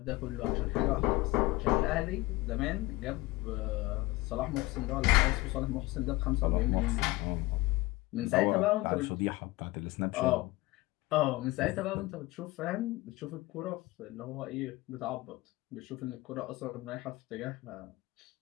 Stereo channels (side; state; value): right; quieter; 20.4 dB